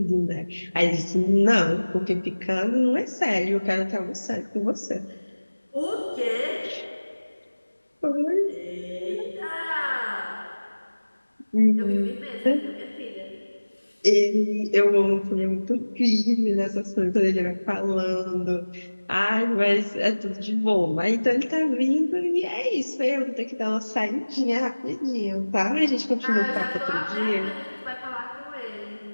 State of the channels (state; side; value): inverted; both; correlation -1.00